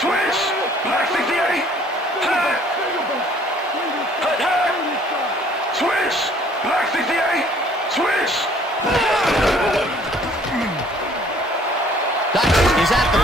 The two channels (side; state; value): both; normal; correlation 0.58